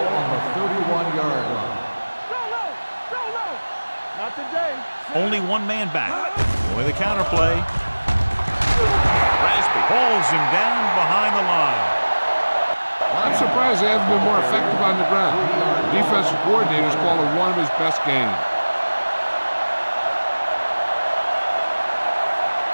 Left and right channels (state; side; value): inverted; both; correlation -1.00